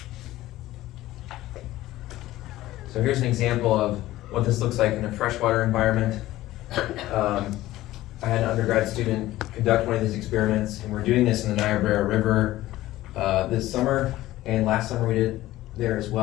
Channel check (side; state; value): right; quieter; 16.0 dB